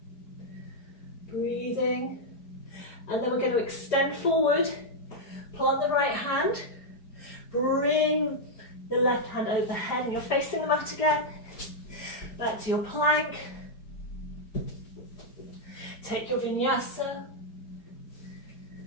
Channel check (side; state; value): right; late; 4.8 ms